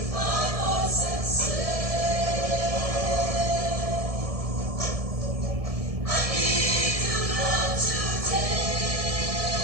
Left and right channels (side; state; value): left; late; 1.7 ms